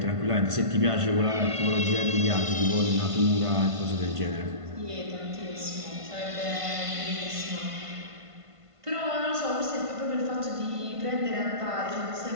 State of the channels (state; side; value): late; left; 1.5 ms